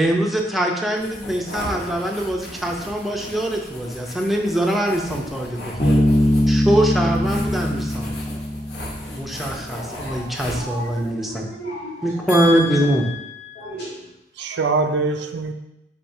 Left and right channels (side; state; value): both; normal; correlation 0.77